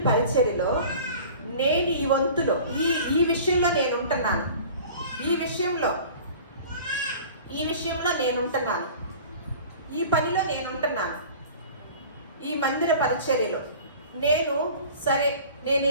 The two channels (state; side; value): inverted; both; correlation -0.42